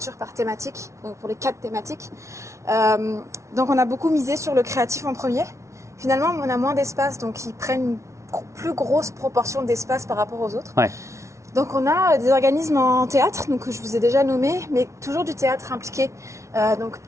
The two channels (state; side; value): late; left; 0.14 ms